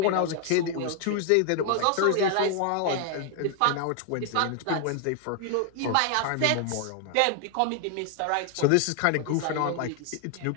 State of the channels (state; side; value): different; both; correlation 0.00